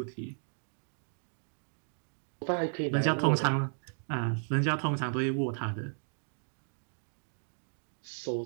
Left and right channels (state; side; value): silent; left; digital silence